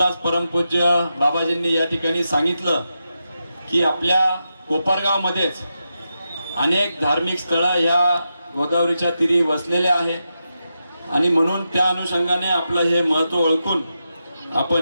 परमपूज्य बाबाजींनी या ठिकाणी सांगितलं की आपल्या कोपरगाव मध्येच अनेक धार्मिक स्थळं ह्या गोदावरीच्या तीरी वसलेल्या आहेत आणि म्हणून त्या अनुषंगाने आपलं हे महत्व ओळखून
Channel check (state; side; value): inverted; both; correlation -0.88